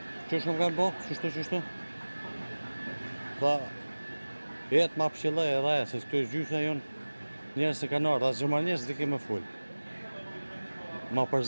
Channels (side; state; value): both; inverted; correlation -1.00